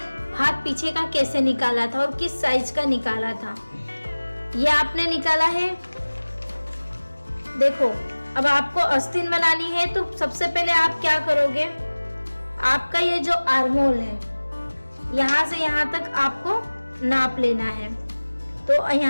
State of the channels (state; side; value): inverted; both; correlation -1.00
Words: भाग पीछे का कैसे निकाला था और किस साइज का निकाला था। ये आपने निकाला है। देखो, अब आपको अस्तीन बनानी है तो सबसे पहले आप क्या करोगे, आपका ये जो आर्महोल है यहाँ से यहाँ तक आपको नाप लेना है। तो